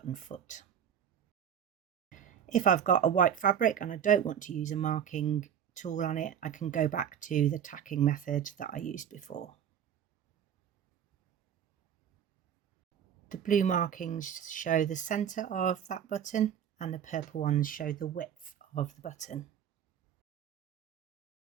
foot. If I've got a white fabric and I don't want to use a marking tool on it, I can go back to the tacking method that I used before. The blue markings show the centre of that button and the purple ones show the width of the button.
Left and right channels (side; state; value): left; quieter; 9.0 dB